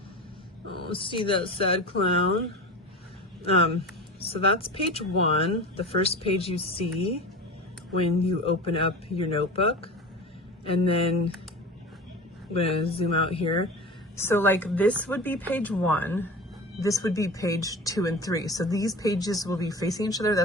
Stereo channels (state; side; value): normal; both; correlation 0.32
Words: Oh, see that sad clown. So that's page 1, the first page you see when you open up your notebook. And then I'm going to zoom out here. So like this would be page 1. This would be page 2 and 3. So these pages will be facing each other.